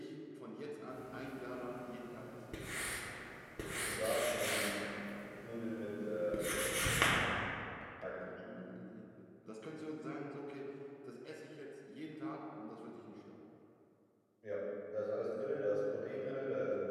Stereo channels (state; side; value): identical; both; correlation 1.00